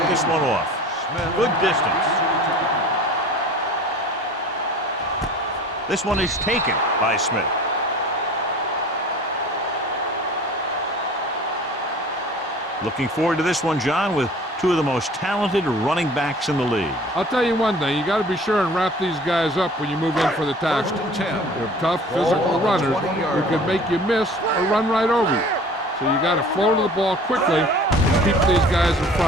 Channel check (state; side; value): normal; both; correlation 0.45